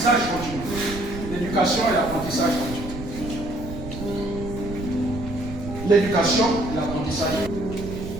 continu. L'éducation et l'apprentissage continu. L'éducation et l'apprentissage continu.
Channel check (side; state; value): right; noise; rumble, 10 dB below the sound